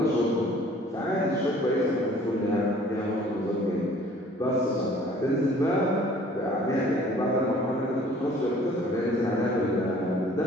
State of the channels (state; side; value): normal; both; correlation 0.53